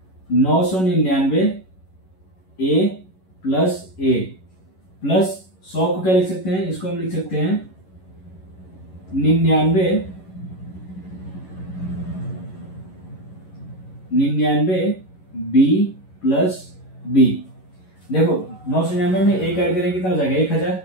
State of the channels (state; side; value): late; right; 11 ms